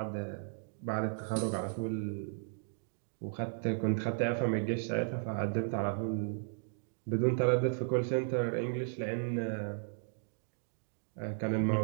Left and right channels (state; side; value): silent; left; digital silence